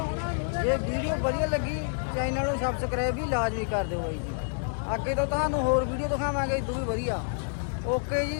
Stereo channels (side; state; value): right; silent; digital silence